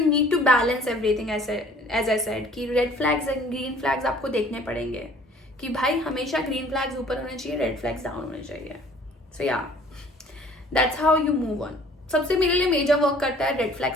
need to balance everything. As I said कि red flags and green flags आपको देखने पड़ेंगे कि भाई हमेशा ग्रीन फ्लैग्स ऊपर होने चाहिए, रेड फ्लैग्स डाउन होने चाहिए। सो या that's how you move on. सबसे मेरे लिए मेजर वर्क करता है रेड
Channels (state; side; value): normal; both; correlation 0.53